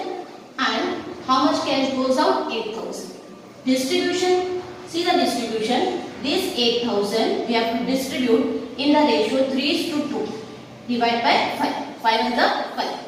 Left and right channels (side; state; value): both; identical; correlation 1.00